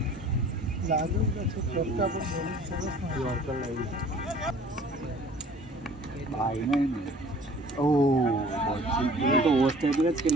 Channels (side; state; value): both; normal; correlation 0.50